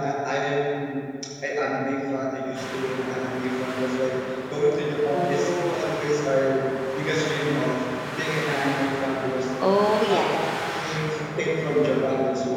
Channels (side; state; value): both; identical; correlation 1.00